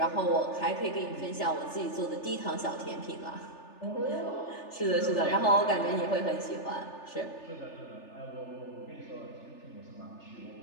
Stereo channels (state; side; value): late; right; 3.4 ms